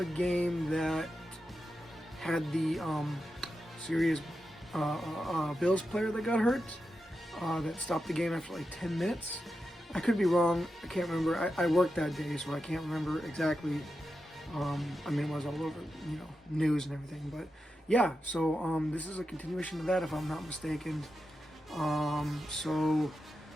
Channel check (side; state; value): both; normal; correlation 0.89